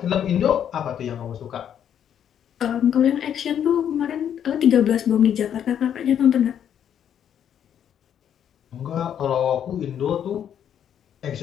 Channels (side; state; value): right; quieter; 9.3 dB